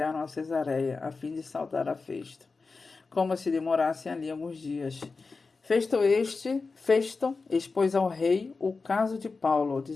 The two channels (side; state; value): right; quieter; 4.2 dB